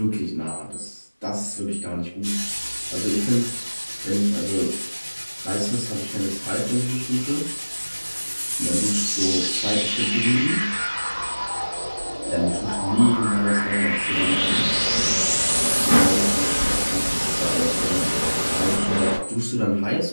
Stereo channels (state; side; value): inverted; both; correlation -1.00